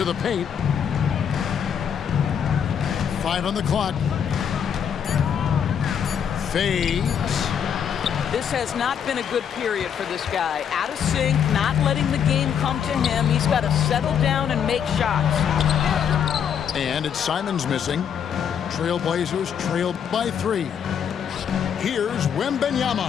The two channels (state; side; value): quieter; right; 8.1 dB